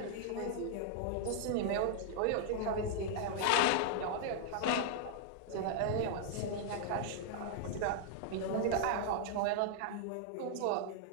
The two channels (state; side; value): different; both; correlation -0.01